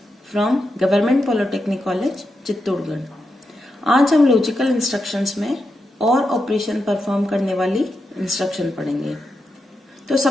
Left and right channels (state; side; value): normal; both; correlation 0.87